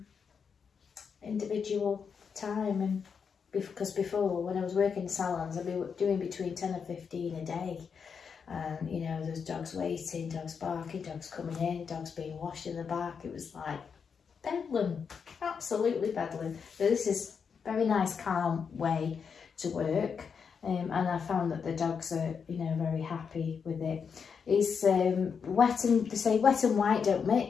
individual time. And because before, when I was working in salons, I'd be doing between 10 and 15 a day, and you know, there's dogs waiting, dogs barking, dogs coming in, dogs being washed in the back. It was like bedlam, absolutely bedlam. But this is a very nice, calm way to work, and I found that the dogs are, you know, very happy with it. It's wet, and they say wet and white don't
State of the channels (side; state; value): right; quieter; 6.3 dB